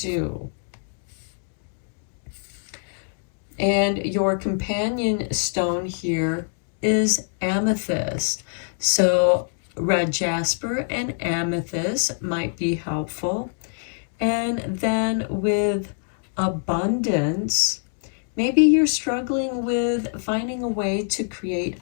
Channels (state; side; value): silent; right; digital silence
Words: And your companion stone here is amethyst. So red jasper and amethyst might be helpful. And then with abundance, maybe you're struggling with finding a way to create